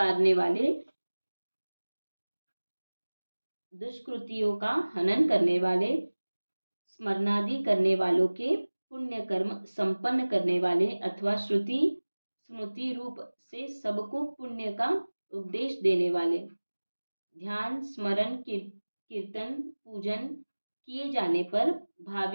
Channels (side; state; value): both; inverted; correlation -1.00